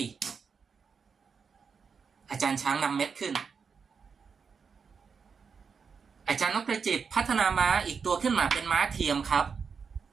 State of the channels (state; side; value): quieter; left; 5.8 dB